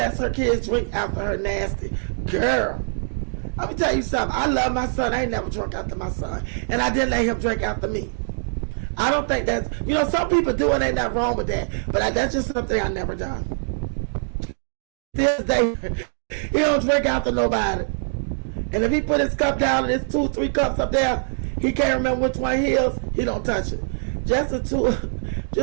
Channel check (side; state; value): left; silent; digital silence